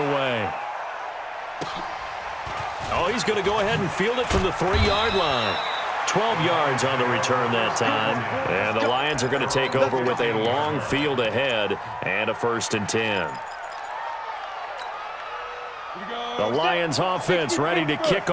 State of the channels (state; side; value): identical; both; correlation 1.00